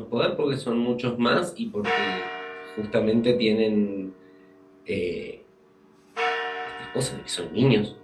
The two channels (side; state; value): both; identical; correlation 1.00